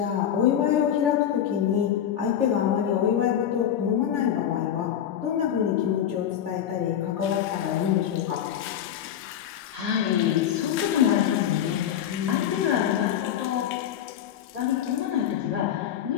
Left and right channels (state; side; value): quieter; right; 9.9 dB